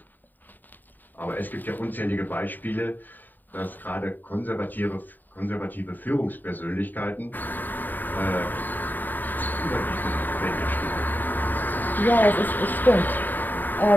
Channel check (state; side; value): late; right; 0.089 ms